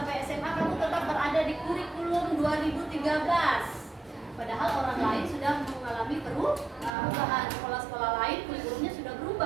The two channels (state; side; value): drops out; left; at 7.0 s